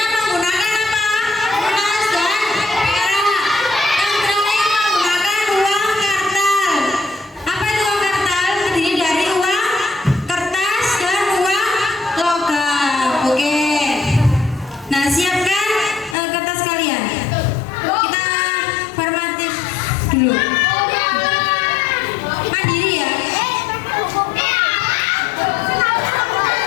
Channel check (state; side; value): drops out; right; at 16.2 s